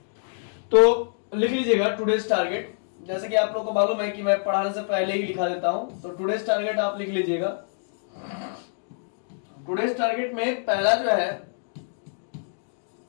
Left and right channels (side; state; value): right; silent; digital silence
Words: तो लिख लीजिएगा टुडेज टारगेट। जैसे कि आप लोगों को मालूम है कि मैं पढ़ाने से पहले ही लिखा देता हूं, तो टुडेज टारगेट आप लिख लीजिएगा। टुडेज टारगेट में पहला जो है